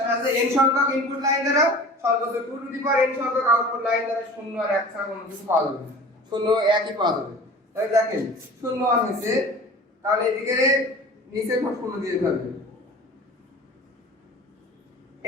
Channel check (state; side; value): normal; both; correlation 0.40